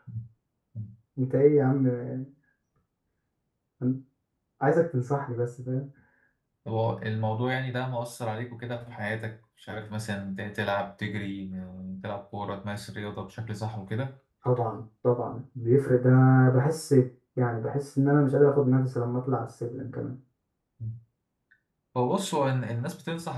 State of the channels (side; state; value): both; identical; correlation 1.00